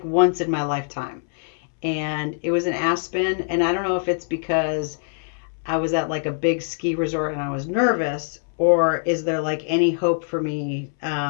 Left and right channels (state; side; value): silent; right; 63 dB below the other